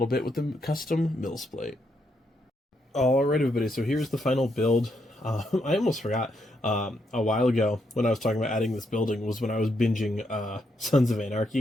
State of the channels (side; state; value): both; normal; correlation 0.78